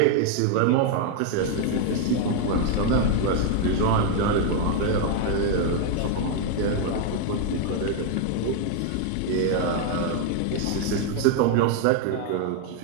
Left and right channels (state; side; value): different; both; correlation 0.00